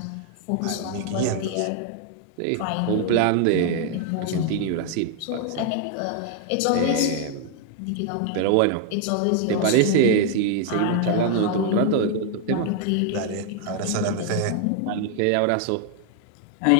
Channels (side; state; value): both; different; correlation 0.00